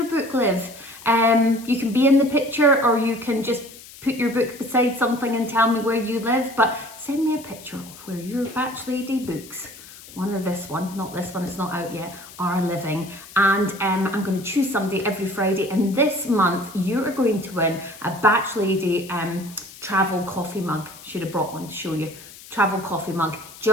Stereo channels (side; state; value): left; noise; hiss, 18 dB below the sound